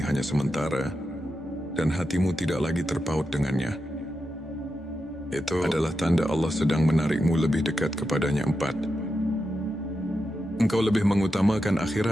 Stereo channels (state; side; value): normal; both; correlation 0.88